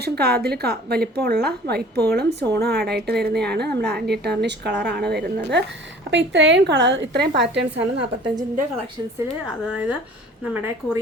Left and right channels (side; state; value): both; normal; correlation 0.48